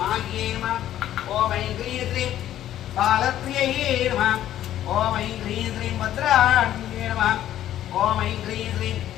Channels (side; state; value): right; quieter; 12.2 dB